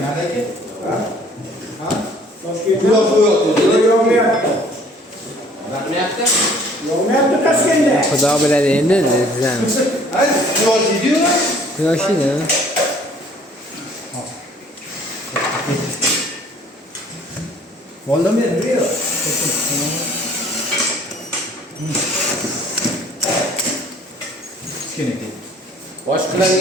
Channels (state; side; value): normal; both; correlation 0.56